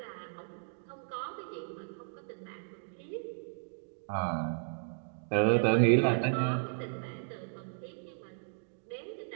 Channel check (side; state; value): left; silent; digital silence